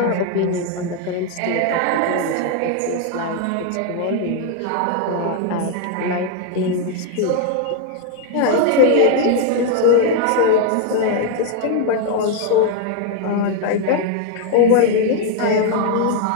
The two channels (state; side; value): different; both; correlation 0.00